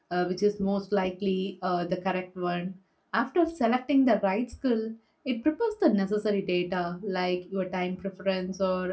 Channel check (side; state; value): both; identical; correlation 1.00